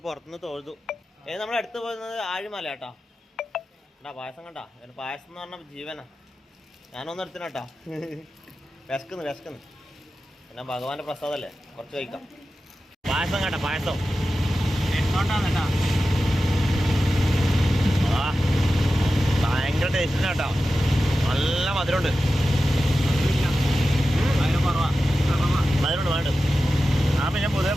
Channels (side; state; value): both; normal; correlation 0.93